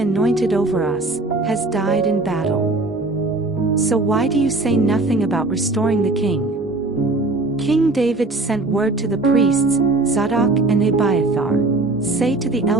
over us, has died in battle. So why do you say nothing about restoring the king? King David sent word to the priests, Zadok and Abiathar, Say to the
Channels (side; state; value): left; quieter; 3.1 dB